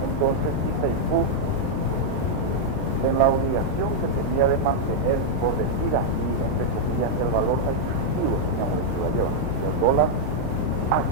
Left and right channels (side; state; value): left; late; 14 ms